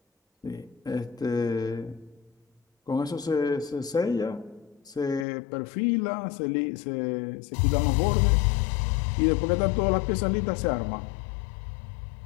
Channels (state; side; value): drops out; right; at 5.2 s